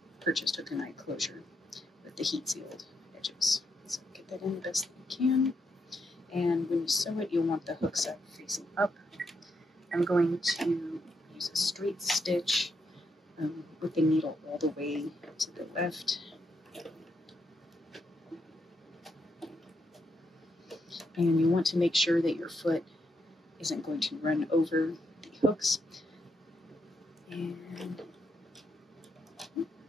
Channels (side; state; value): both; normal; correlation 0.80